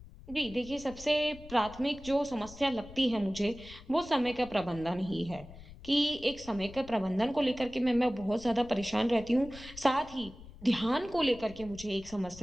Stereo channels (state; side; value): noise; left; rumble, 18 dB below the sound